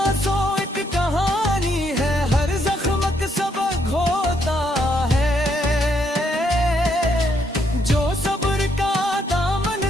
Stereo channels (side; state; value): both; normal; correlation 0.74